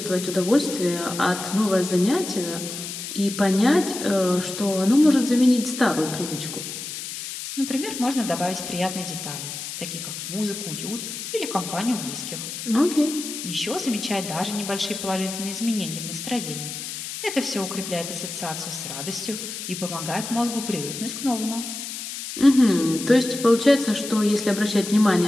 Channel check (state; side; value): noise; left; hiss, 8 dB below the sound